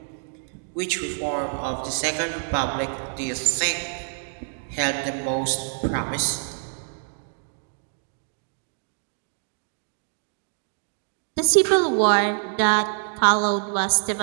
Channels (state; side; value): silent; left; digital silence